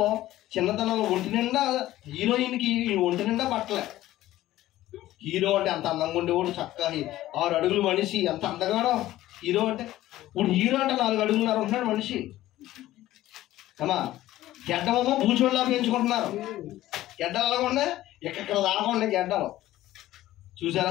ఒంటి నిండా హీరోయిన్కి ఒంటి నిండా బట్టలే. హీరో అంటే అంత అందంగా ఉండేవాడు, చక్కగా 6 అడుగులు మనిషి, ఎంత అందగాడో హీరో అంటే. ఇప్పుడు హీరో అంటే 4 అడుగులున్నర ఉంటున్నాడు మనిషి. అమ్మా, గెడ్డమేమో బూచోళ్ళలా పెంచుకుంటున్నారు. గెడ్డలు అలాగకుండా ఎక్కడ దాకుండా గెడ్డలు. చూసారా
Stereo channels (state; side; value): quieter; right; 15.1 dB